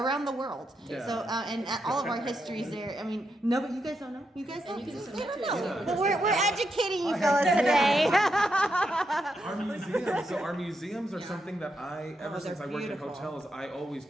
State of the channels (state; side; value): normal; both; correlation 0.82